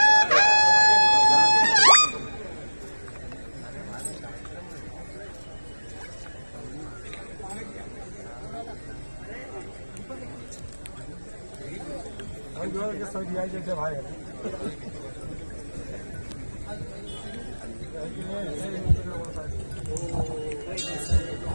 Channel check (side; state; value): both; inverted; correlation -1.00